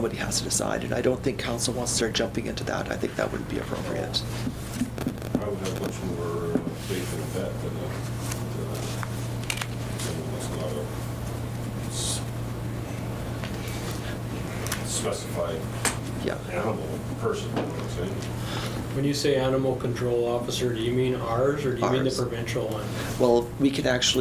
has to decide, and I don't think council wants to start jumping into that. I think that wouldn't be appropriate. I would have much more faith in a vet than someone that's not a specified Yeah. animal person, you know what I'm saying? When you say animal control officer, do you mean ours or do you mean the Ours. provincial one? Well, we can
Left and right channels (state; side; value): identical; both; correlation 1.00